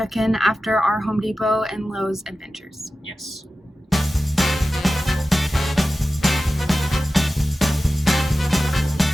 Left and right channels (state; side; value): normal; both; correlation 0.94